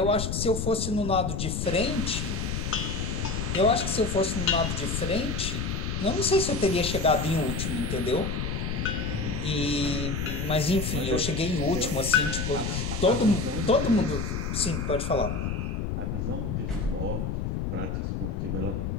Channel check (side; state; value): left; noise; rumble, 2 dB below the sound